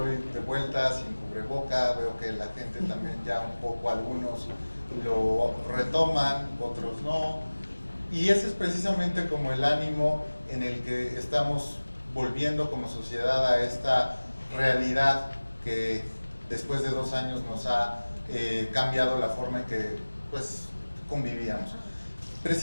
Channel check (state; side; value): inverted; both; correlation -1.00